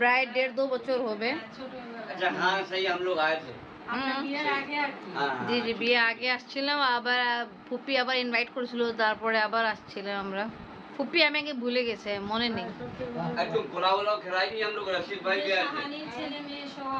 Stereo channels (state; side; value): identical; both; correlation 1.00